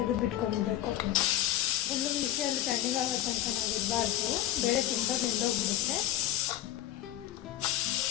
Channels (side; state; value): right; quieter; 13.2 dB